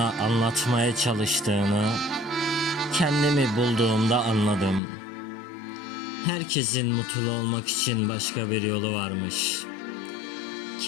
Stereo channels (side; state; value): right; drops out; at 4.8 s